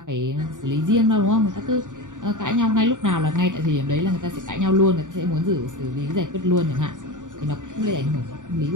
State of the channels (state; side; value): late; left; 0.87 ms